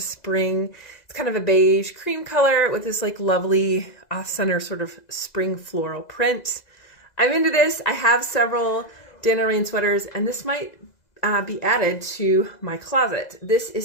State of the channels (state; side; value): late; right; 2.0 ms